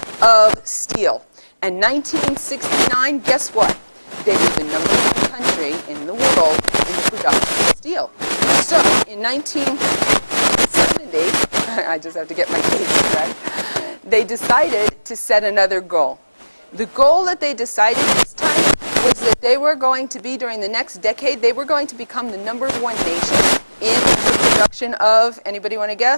of steel. And 1969, guess what? They were the #1 country in the world in the production of steel. So in 1970, I just have to get my dates correct, they decided to set another goal. The goal that they decided this time was that they were going to be, during the next decade, they were going to become the #1 nation in the production of, anybody want to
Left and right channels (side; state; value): both; inverted; correlation -1.00